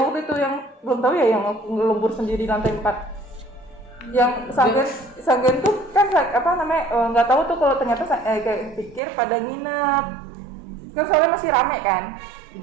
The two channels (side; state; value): left; drops out; at 9.0 s